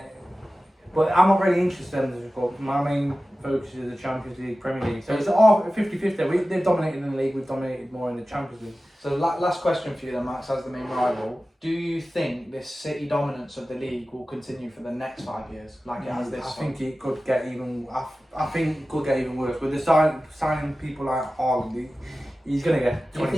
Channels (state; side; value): normal; both; correlation 0.95